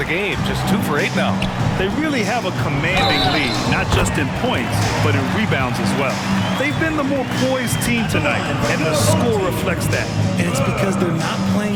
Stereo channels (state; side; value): identical; both; correlation 1.00